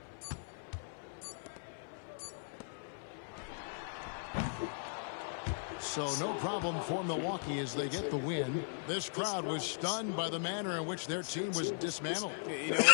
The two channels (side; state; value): right; silent; 52 dB below the other